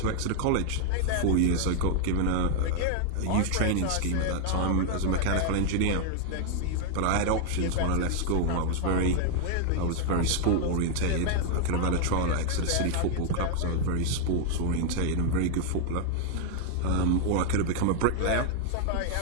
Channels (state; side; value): different; both; correlation 0.00